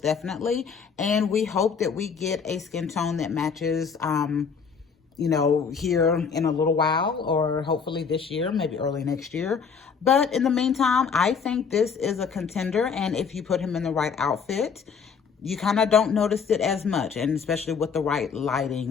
definitely. And we hope that we get a skin tone that matches, you know, here in a little while, or hopefully this year, maybe early next year. But in the meantime, I think this is a contender. And if you put him in the right outfit, you kind of don't notice it as much, and especially with the right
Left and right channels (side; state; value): right; quieter; 6.1 dB